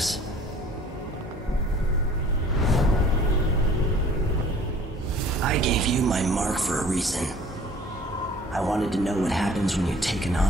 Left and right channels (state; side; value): normal; both; correlation 0.51